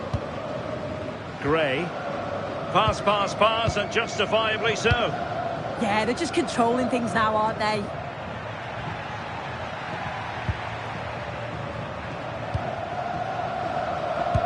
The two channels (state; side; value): identical; both; correlation 1.00